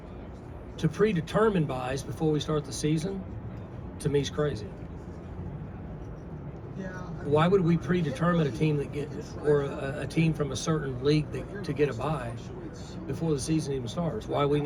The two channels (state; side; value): identical; both; correlation 1.00